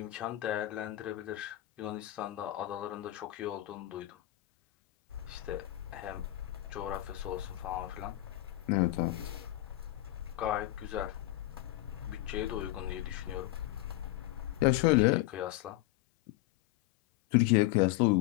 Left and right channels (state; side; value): quieter; right; 16.2 dB